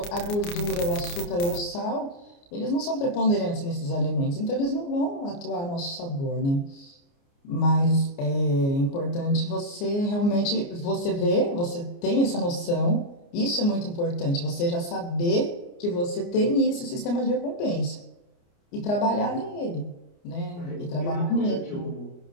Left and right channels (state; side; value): late; right; 29 ms